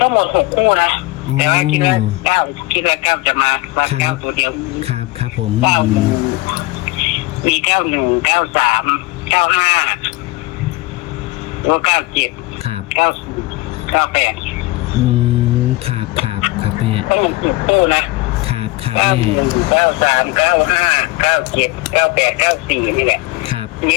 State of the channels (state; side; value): quieter; right; 21.0 dB